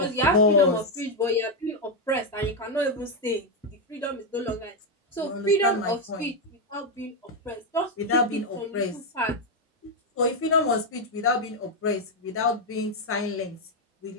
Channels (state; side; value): normal; both; correlation 0.03